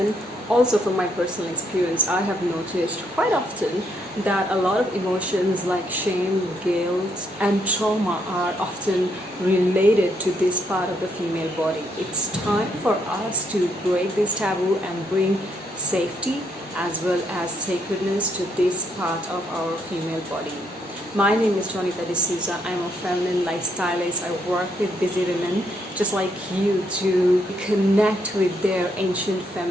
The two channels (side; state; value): both; normal; correlation 0.74